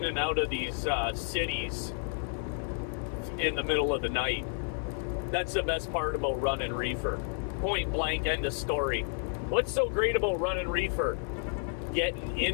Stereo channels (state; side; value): silent; right; 57 dB below the other